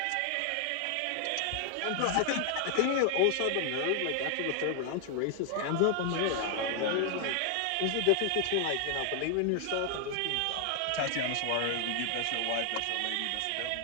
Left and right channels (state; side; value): different; both; correlation 0.00